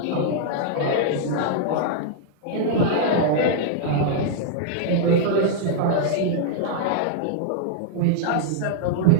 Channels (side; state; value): both; different; correlation -0.01